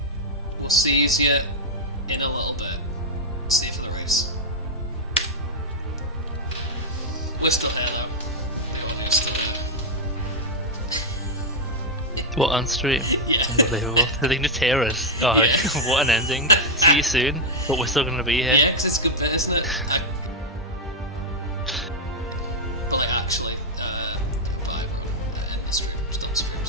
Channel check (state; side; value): normal; both; correlation -0.02